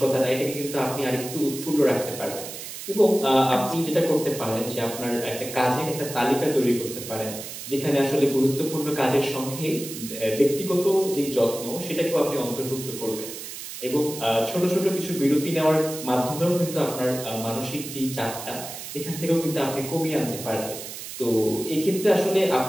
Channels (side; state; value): right; noise; hiss, 10 dB below the sound